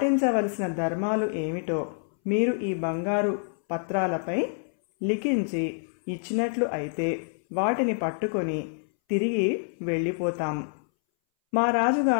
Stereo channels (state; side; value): silent; right; 60 dB below the other